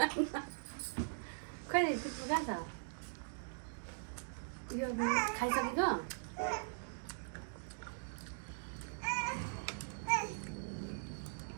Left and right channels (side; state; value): left; silent; digital silence